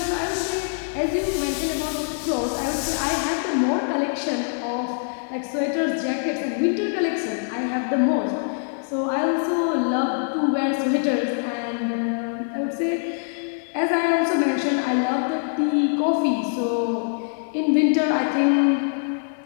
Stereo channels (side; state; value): right; silent; 63 dB below the other